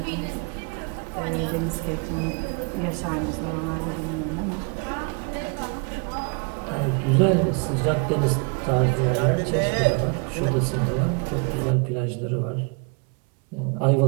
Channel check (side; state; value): left; quieter; 34.6 dB